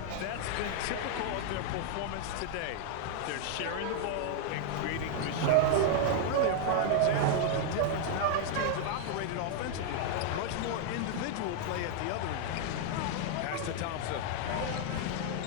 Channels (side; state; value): both; different; correlation 0.00